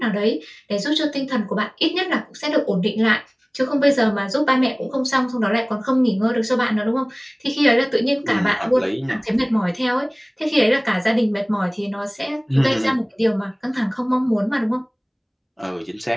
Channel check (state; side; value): identical; both; correlation 1.00